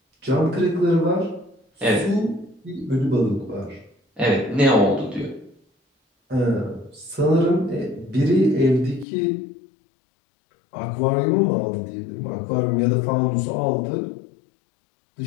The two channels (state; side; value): drops out; right; at 9.1 s